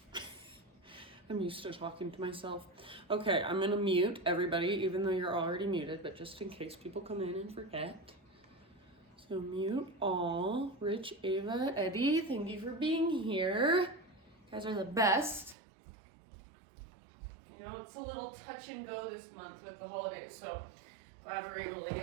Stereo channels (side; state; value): left; drops out; at 15.6 s